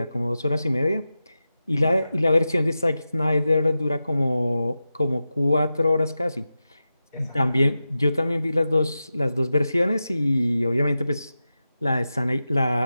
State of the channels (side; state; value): both; inverted; correlation -0.92